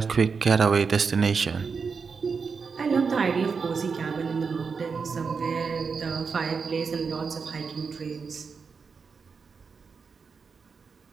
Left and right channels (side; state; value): left; quieter; 5.4 dB